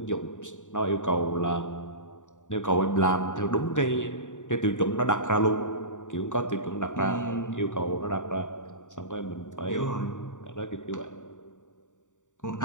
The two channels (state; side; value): late; right; 0.86 ms